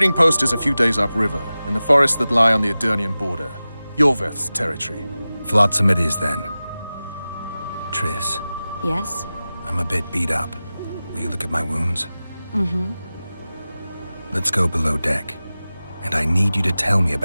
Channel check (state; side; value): inverted; both; correlation -0.96